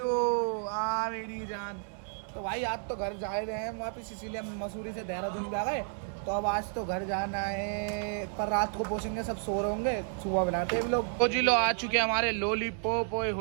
आ मेरी जान। तो भाई आज तो घर जा रहे हैं वापस, इसीलिए हम मसूरी से देहरादून भी आ गए। तो अब आज तो घर जाना है, पर रात को पहुंचेंगे, सब सो रहे होंगे, सुबह बनाते हैं लोग। तो जी लो आ चुके हैं हमारे लॉलीपॉप। ओए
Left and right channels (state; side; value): silent; left; 57 dB below the other